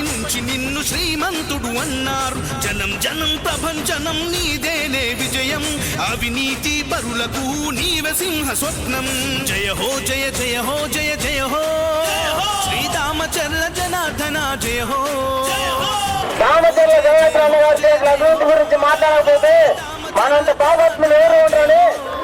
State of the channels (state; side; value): identical; both; correlation 1.00